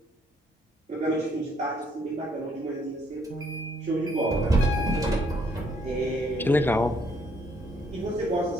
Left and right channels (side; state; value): both; normal; correlation 0.67